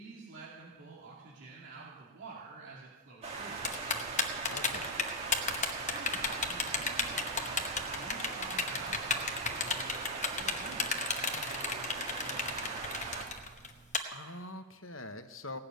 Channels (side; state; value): both; normal; correlation -0.03